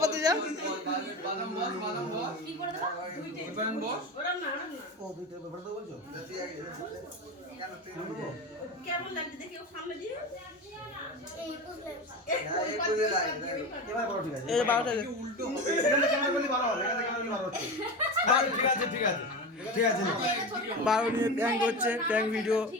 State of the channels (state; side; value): normal; both; correlation 0.24